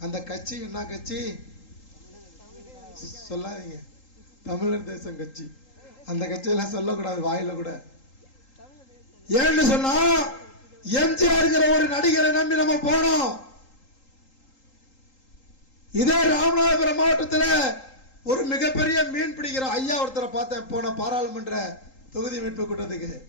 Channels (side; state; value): right; late; 3.8 ms